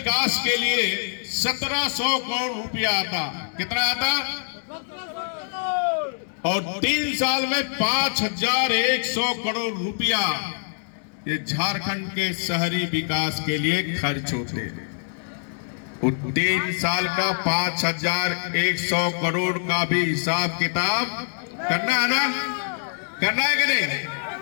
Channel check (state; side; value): silent; right; digital silence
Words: के लिए 1700 करोड़ रुपया आता, कितना आता? और 3 साल में 5100 करोड़ रुपया ये झारखंड के शहरी विकास के लिए खर्च होते। 3 साल का 5100 करोड़ का भी हिसाब किताब करना है ना, करना है कि नहीं?